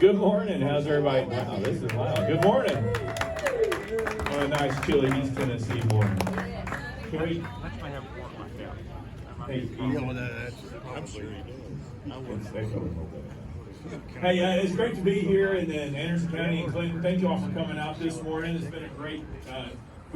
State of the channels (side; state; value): both; identical; correlation 1.00